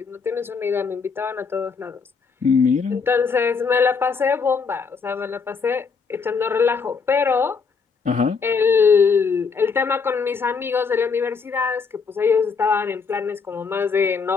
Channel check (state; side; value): quieter; right; 5.3 dB